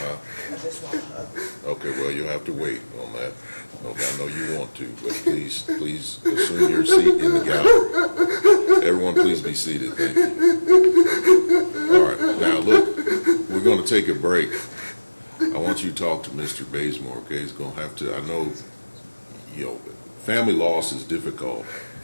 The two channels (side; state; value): both; inverted; correlation -1.00